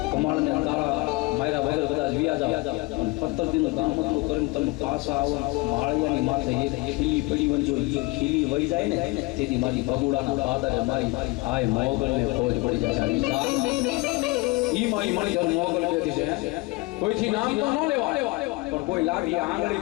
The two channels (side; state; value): right; quieter; 23.7 dB